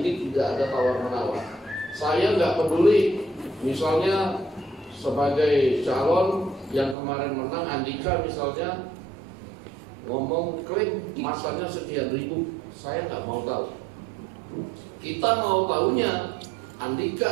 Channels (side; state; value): left; drops out; at 7.0 s